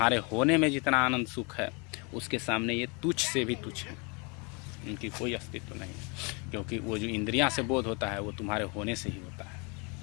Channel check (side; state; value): right; quieter; 31.5 dB